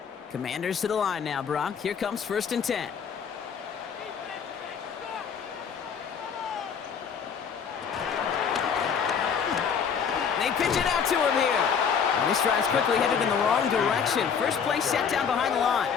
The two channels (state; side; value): quieter; right; 6.9 dB